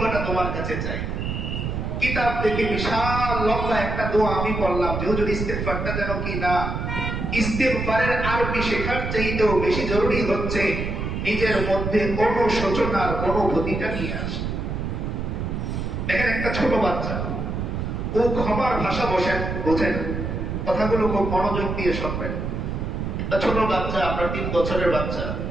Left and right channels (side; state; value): right; noise; rumble, 3 dB below the sound